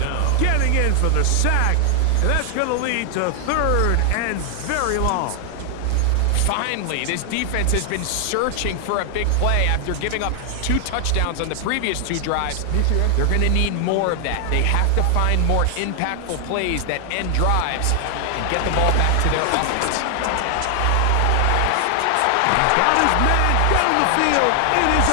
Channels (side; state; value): both; different; correlation 0.00